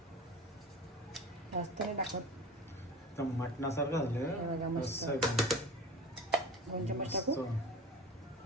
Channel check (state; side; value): normal; both; correlation 0.34